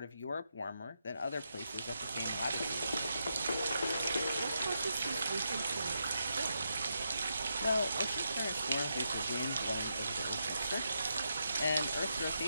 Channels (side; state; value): both; inverted; correlation -0.83